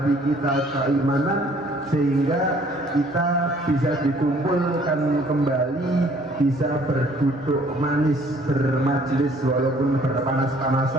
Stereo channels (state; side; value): normal; both; correlation 0.58